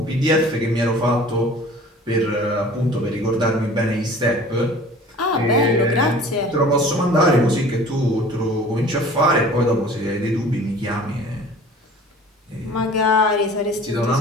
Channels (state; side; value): normal; both; correlation 0.46